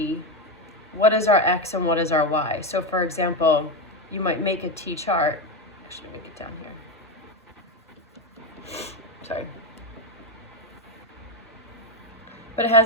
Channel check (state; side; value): normal; both; correlation 0.12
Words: what is our x and what is our y. So for example, you might make a t chart. Actually, make it down here. Sorry. But it